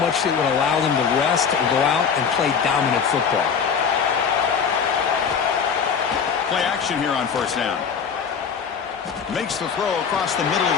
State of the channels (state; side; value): quieter; right; 6.6 dB